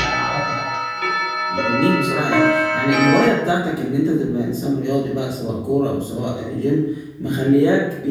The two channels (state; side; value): identical; both; correlation 1.00